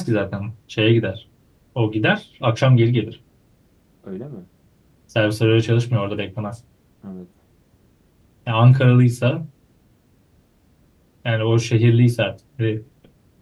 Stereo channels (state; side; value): identical; both; correlation 1.00